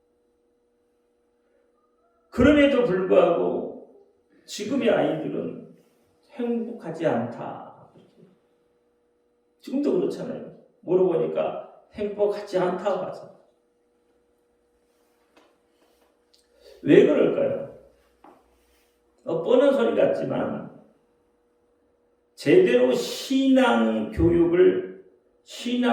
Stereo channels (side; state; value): both; identical; correlation 1.00